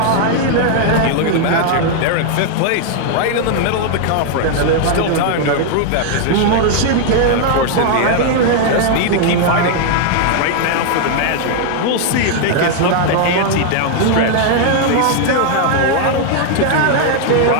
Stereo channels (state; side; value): different; both; correlation 0.00